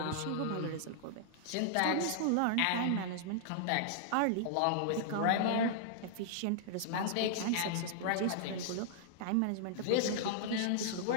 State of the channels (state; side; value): different; both; correlation -0.01